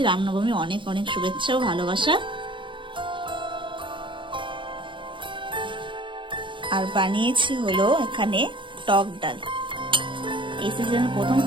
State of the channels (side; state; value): left; late; 0.24 ms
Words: রামনবমী অনেক অনেক শুভেচ্ছা ও ভালোবাসা। আর বানিয়েছি হলো এখানে টক ডাল। এই সিজনের প্রথম